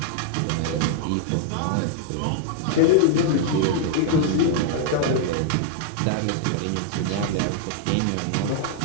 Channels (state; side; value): different; both; correlation -0.01